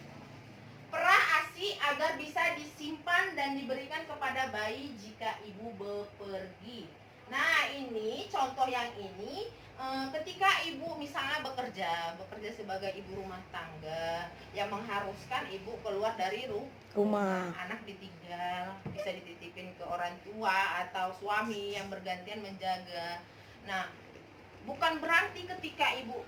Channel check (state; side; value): identical; both; correlation 1.00